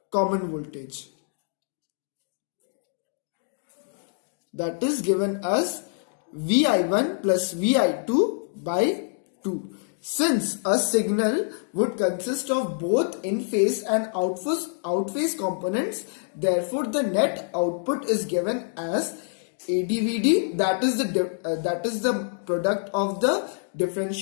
common voltage, that is given as Vi1 plus Vi2 by 2. Since a signal would consist of both in-phase and out-phase components, therefore the net output is given as AdVd, that is the product of the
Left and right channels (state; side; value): silent; right; 61 dB below the other